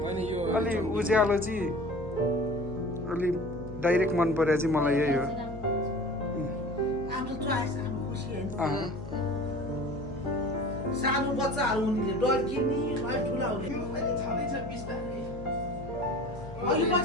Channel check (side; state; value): left; noise; hum, 12 dB below the sound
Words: अलि उज्यालो चाहिँ अलि डाइरेक्ट मन पर्यो चाहिँ मलाई यही हो सानो बच्चाहरू उनीले डर किन्ने ठुला